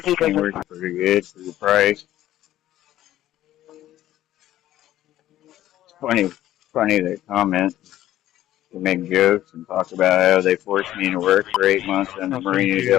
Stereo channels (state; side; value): quieter; right; 13.6 dB